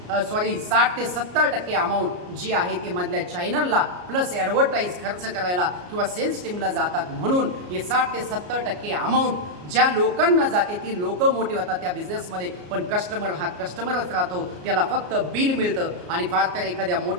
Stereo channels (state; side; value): late; left; 34 ms